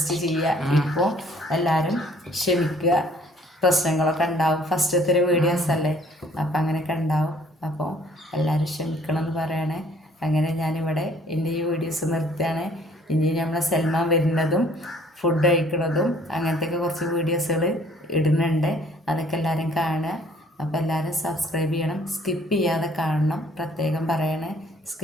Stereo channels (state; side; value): normal; both; correlation 0.58